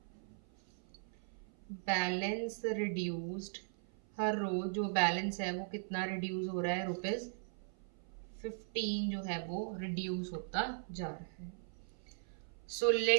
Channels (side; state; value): left; silent; 52 dB below the other